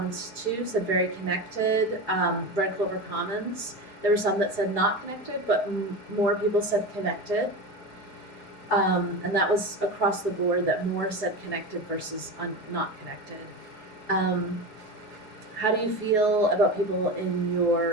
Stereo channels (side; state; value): right; late; 4.7 ms